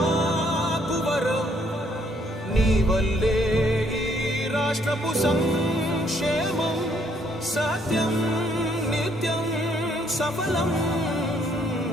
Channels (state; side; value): normal; both; correlation 0.67